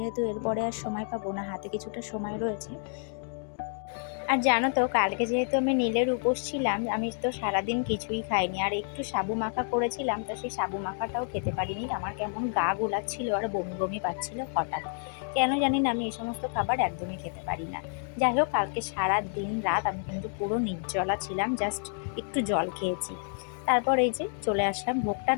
এরপরে আর সময় পাবো না, হাতে কিছুটা সময় রয়েছে। আর জানো তো, কালকে যেহেতু আমি নীলের উপোস ছিলাম, আমি তো সারাদিন কিছুই খাইনি। আর একটু সাবু মাখা করেছিলাম, তো সেই সাবু মাখাটাও খেতে পারিনি। আমার কেমন গা গোলাচ্ছিল আর বমি বমি পাচ্ছিল হঠাৎ। কেন জানি না, আমি এই সমস্ত খাবার একদমই খেতে পারি না। যাই হোক, কালকে সারা দিন রাত আমি কিন্তু পুরো নির্জলা ছিলাম, জাস্ট একটু জল খেয়েছি। তারপর এই যে চলে আসলাম, ভোগটা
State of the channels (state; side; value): silent; right; 58 dB below the other